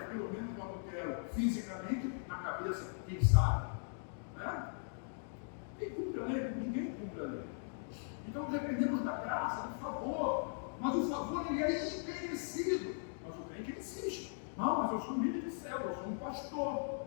pelo menos não adultero fisicamente, na cabeça, quem sabe? Né? Quem cumpre a lei? Ninguém cumpre a lei. Então dependemos da graça, do favor. Mas o favor ele é imerecido. Mas o crente insiste. Não, mas eu sou um líder de célula, eu sou um pastor,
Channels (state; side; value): silent; right; digital silence